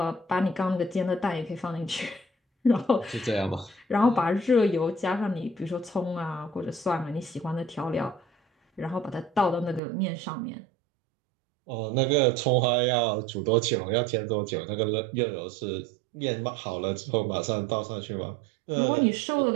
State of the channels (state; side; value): drops out; left; at 9.8 s